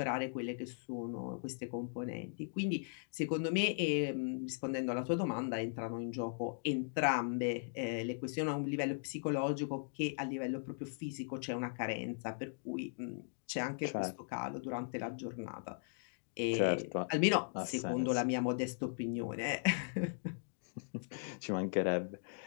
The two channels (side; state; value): right; silent; digital silence